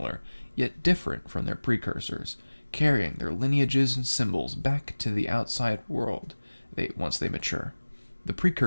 yet different from their precursors, carrying their lineages and symbols back to the outside world once they mature. The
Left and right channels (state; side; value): inverted; both; correlation -1.00